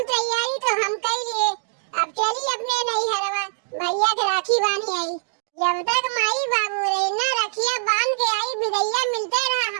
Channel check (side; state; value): left; silent; digital silence